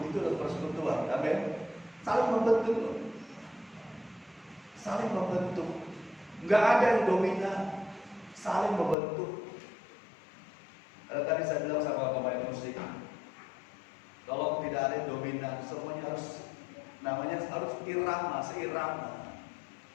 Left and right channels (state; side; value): drops out; right; at 9.0 s